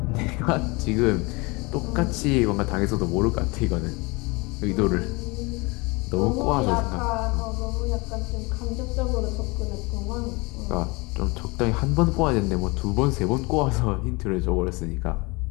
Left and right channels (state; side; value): quieter; right; 26.1 dB